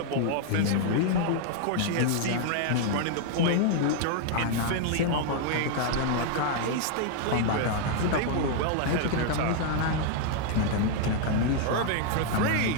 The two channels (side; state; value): both; different; correlation 0.00